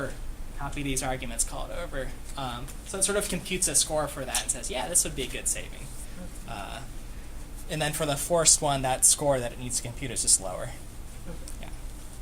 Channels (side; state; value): both; identical; correlation 1.00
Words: copy these arguments, call it over. So it sort of computes a score for that and says, yeah, this would be a good saving. And then for the forced one, that score that it needs to compute is just lower. Yeah.